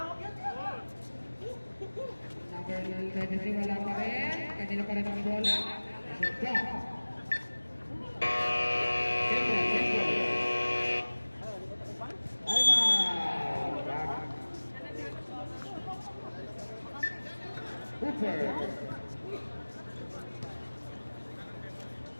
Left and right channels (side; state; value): both; inverted; correlation -1.00